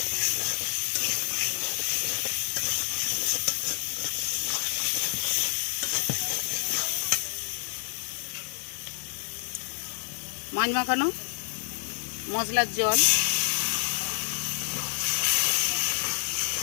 মাছ মাখানো মশলার জল,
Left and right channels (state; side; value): silent; right; digital silence